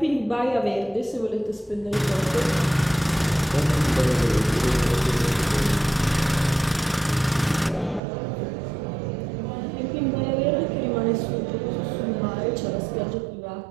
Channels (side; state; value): left; drops out; at 8.0 s